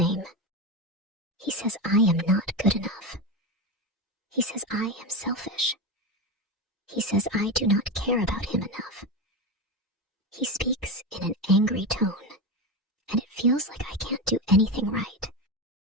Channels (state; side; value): normal; both; correlation 0.18